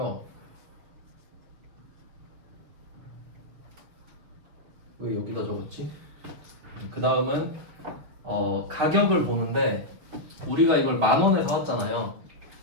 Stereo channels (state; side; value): late; left; 6.8 ms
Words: 왜 여기다 적었지? 그 다음은 가격을 보는데 우리가 이걸 10,000원에 사왔잖아요.